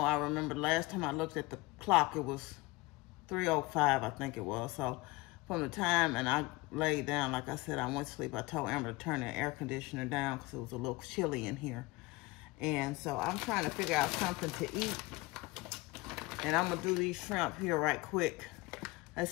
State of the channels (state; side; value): quieter; right; 21.9 dB